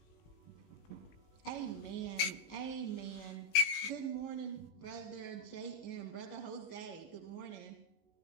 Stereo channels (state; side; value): late; right; 19 ms